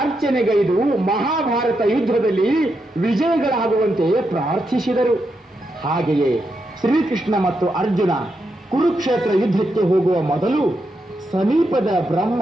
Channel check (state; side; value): normal; both; correlation 0.84